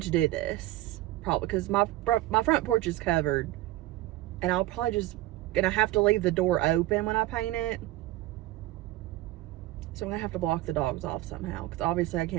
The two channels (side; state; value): left; quieter; 16.5 dB